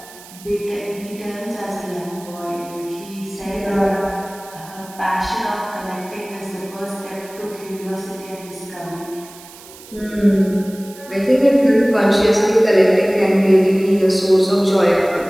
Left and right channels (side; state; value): right; noise; hiss, 20 dB below the sound